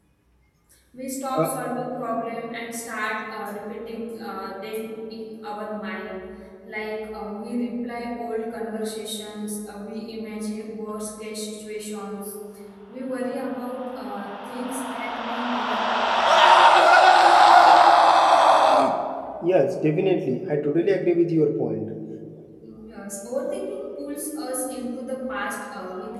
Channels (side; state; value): both; identical; correlation 1.00